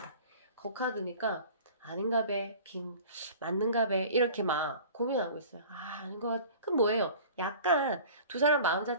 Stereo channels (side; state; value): both; inverted; correlation -0.43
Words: 그 카드니까 아닌가 배 맞는가 배 이렇게 막 고민하고 있어요. 아닌 것 같. 그럼 뭐예요? 약간 두 사람 마음